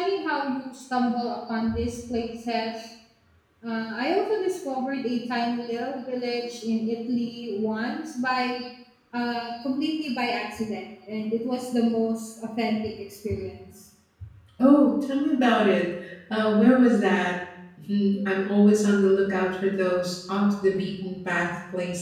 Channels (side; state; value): both; identical; correlation 1.00